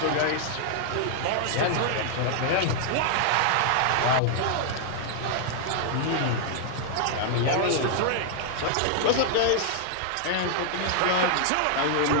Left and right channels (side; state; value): both; different; correlation -0.01